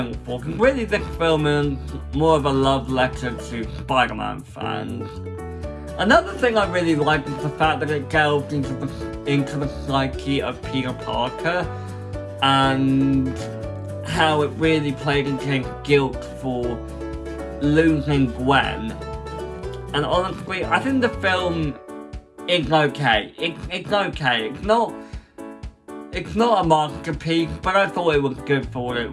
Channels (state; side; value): identical; both; correlation 1.00